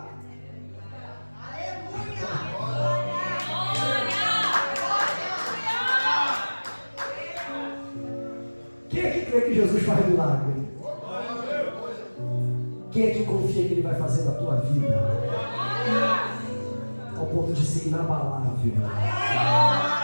Aleluia! Quem é que crê que Jesus faz milagre? Quem é que confia que Ele vai fazer na tua vida? Ao ponto de ser inabalável.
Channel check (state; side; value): inverted; both; correlation -1.00